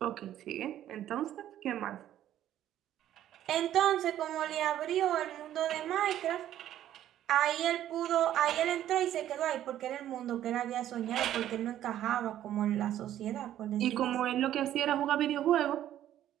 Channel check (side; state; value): left; quieter; 11.9 dB